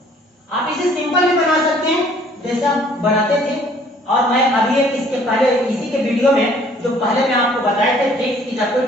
आप इसे सिंपल भी बना सकते हैं जैसे आप बनाते थे, और मैं अभी एक इसके पहले इसी के वीडियो में जो पहले मैं आपको बताए थे ट्रिक्स की, जब कोई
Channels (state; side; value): normal; both; correlation 0.58